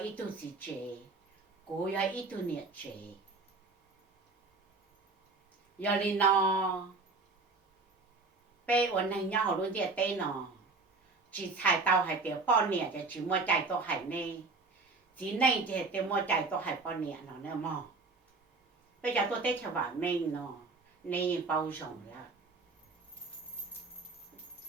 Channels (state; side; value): quieter; left; 3.9 dB